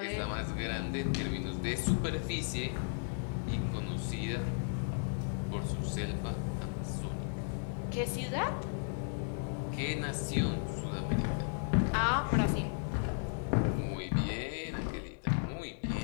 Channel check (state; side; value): silent; right; digital silence